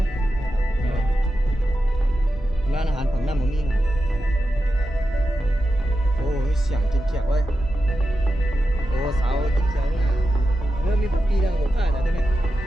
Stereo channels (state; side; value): normal; both; correlation 0.90